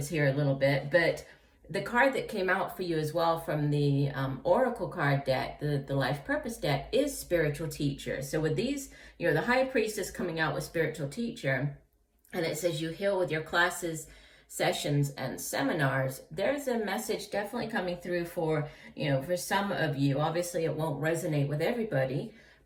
here a little bit, but the card that came out for you as well from the Oracle card deck, the Life Purpose deck, is Spiritual Teacher. So with these, the High Priestess coming out with Spiritual Teacher, and it says you heal with your classes, sessions, and seminars, there's a message definitely coming through for, for some of you. Obviously, it won't resonate with everybody,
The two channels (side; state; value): both; identical; correlation 1.00